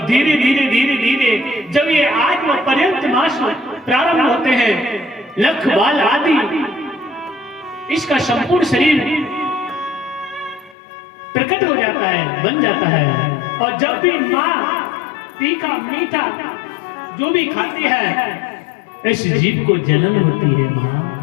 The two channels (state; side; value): drops out; right; at 10.8 s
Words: धीरे धीरे धीरे धीरे जब ये आत्म पर्यंत मास प्रारंभ होते हैं, लख बाल आदि इसका संपूर्ण शरीर प्रकट हो जाता है, बन जाता है। और जब भी मां तीखा मीठा जो भी खाती है, इस जीव को जलन होती है। मां